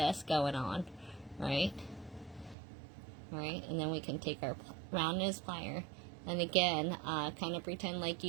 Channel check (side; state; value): left; drops out; at 2.6 s